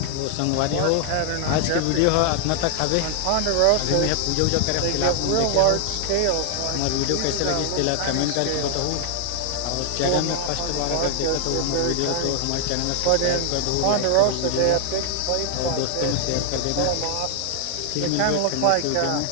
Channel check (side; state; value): both; different; correlation 0.00